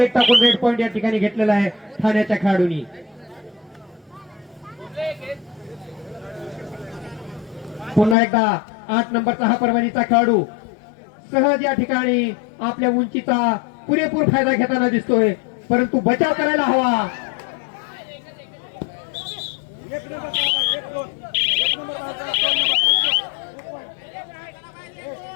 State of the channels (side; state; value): right; drops out; at 8.2 s